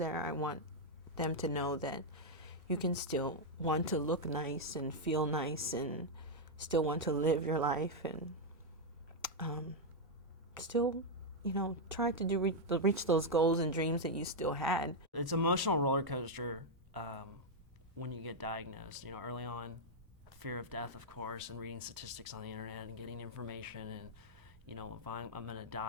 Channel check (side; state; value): both; normal; correlation -0.02